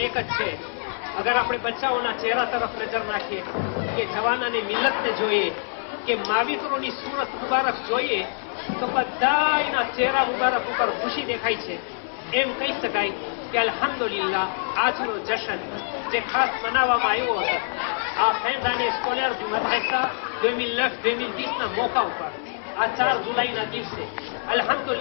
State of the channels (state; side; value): silent; right; 60 dB below the other